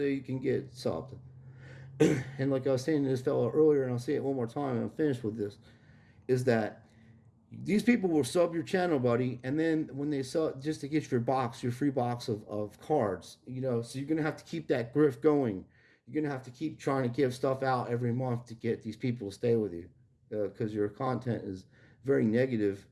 you can get subbed. And like I was saying to this fellow earlier, and I'll say it one more time and I'm finished with this, is that these people will sub your channel, buddy, and then when they sub, just to get your free box of cards, so you're going to have to keep that grift going. You're going to have to keep trying to give stuff out every month to get these people to stay with you. Because your content is very negative,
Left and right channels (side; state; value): both; identical; correlation 1.00